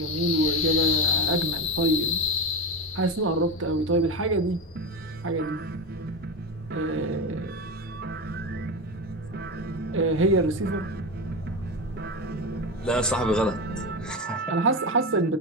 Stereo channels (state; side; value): normal; both; correlation 0.19